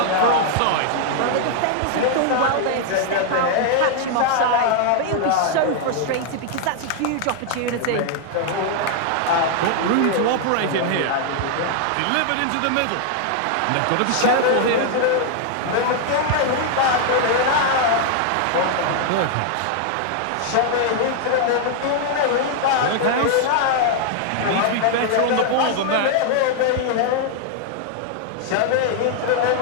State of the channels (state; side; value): different; both; correlation 0.00